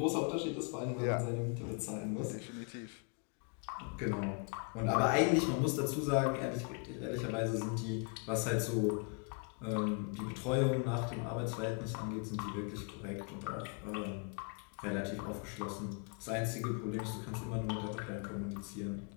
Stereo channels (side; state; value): right; quieter; 37.3 dB